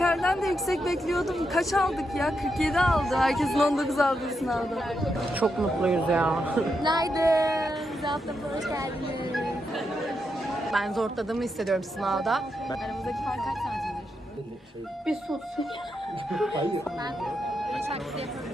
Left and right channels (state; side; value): normal; both; correlation 0.83